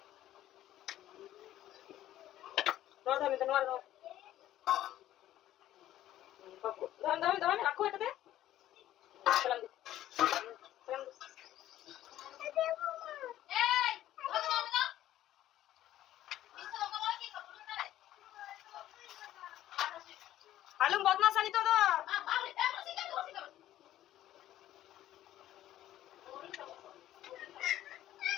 আলম বদমাস আনি তো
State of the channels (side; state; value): right; quieter; 13.2 dB